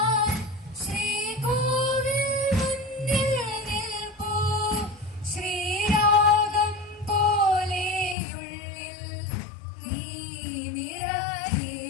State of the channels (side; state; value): right; drops out; at 8.2 s